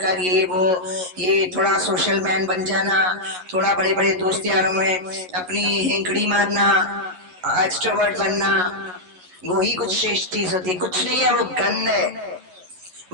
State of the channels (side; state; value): left; late; 11 ms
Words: ये थोड़ा सोशल मैन बन जाना, थोड़ा बड़े बड़े दोस्त यारों में अपनी हेंकड़ी मारना, एक्सट्रोवर्ट बनना, वो ही कुछ श्रेष्ठ चीज होती है। कुछ नहीं है, वो गंध है,